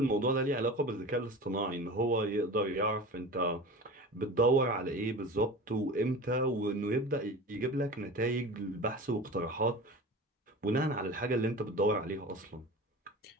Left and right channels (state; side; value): normal; both; correlation 0.34